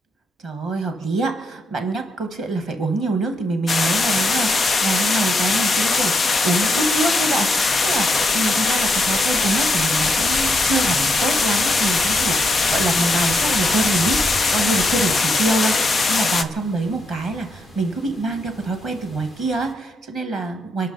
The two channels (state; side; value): normal; both; correlation 0.79